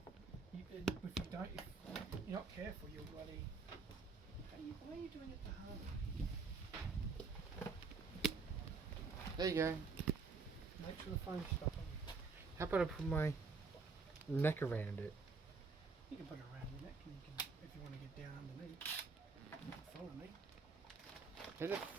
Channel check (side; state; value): left; quieter; 4.6 dB